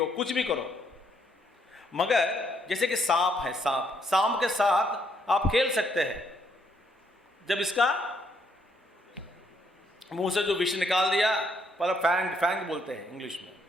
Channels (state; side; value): normal; both; correlation 0.72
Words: कुछ भी करो, मगर जैसे कि सांप है, सांप के साथ आप खेल सकते हैं। जब इसका मुंह से जो विष निकाल दिया, पर फैंग बोलते हैं इंग्लिश में,